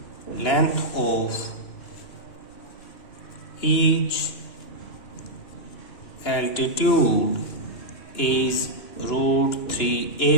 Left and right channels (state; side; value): late; right; 2.9 ms